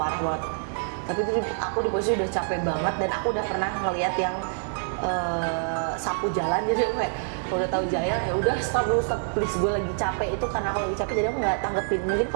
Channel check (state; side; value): silent; left; digital silence